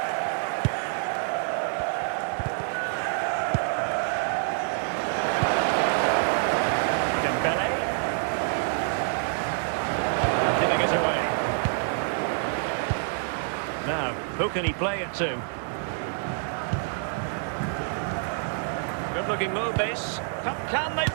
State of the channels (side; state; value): left; silent; digital silence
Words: Dembele. Giving it away. Now, who can he play it to? Good looking move this. Can they